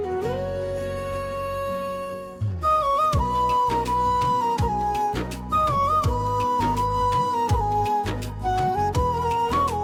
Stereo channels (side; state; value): both; identical; correlation 1.00